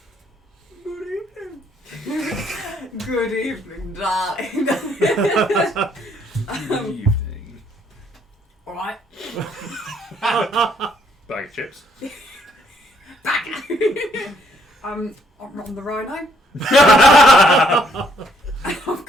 Good evening, darling. Good evening. Alright. Bag of chips. Back. I'm on the rhino. I've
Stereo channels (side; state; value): both; normal; correlation 0.68